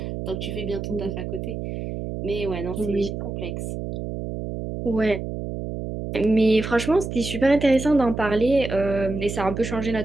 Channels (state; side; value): noise; right; hum, 6 dB below the sound